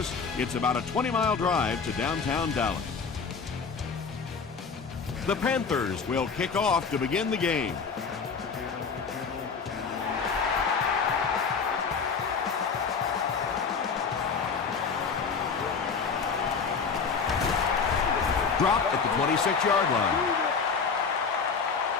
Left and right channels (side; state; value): right; quieter; 5.5 dB